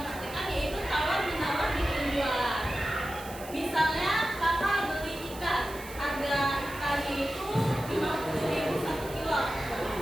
praktekkan yaitu tawar menawar di penjualan. Misalnya kakak beli ikan, harga ikannya itu 50.000 1 kilo.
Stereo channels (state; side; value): noise; right; hiss, 16 dB below the sound